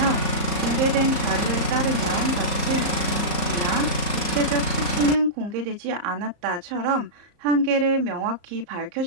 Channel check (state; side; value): late; left; 34 ms